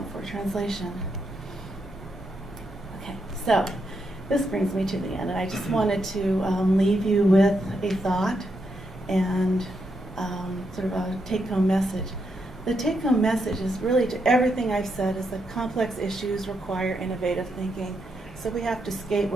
for translation. Okay, so this brings me to the end, and I just wanted to leave you with a thought and sort of a take-home message. The take-home message is really to everything I've said is that complex issues require innovative thinking, so we have to skate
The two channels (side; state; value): both; normal; correlation 0.81